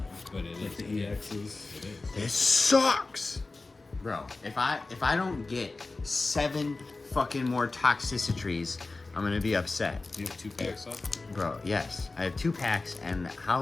But it like is. the EXs. It is. This sucks! Bro, if I don't get 7 fucking more toxicitries, I'm gonna be upset. Do you have 2 packs left? Bro, yes. I have 2 packs, and how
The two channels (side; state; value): right; quieter; 3.5 dB